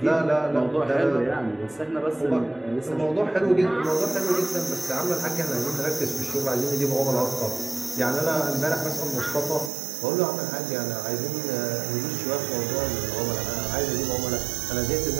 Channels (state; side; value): drops out; left; at 9.7 s